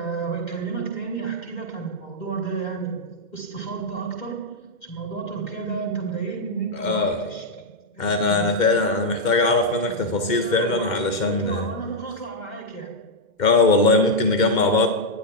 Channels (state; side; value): late; right; 2.1 ms